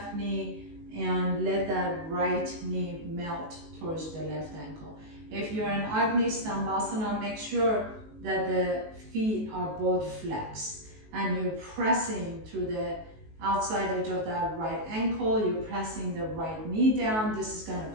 knee and let that right knee melt towards the left ankle. If you're in Agni Stambhasana, make sure that the feet are both flexed and you're pressing through the outside edge of that right ankle. You're pressing the right knee down. This is going to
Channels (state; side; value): late; left; 19 ms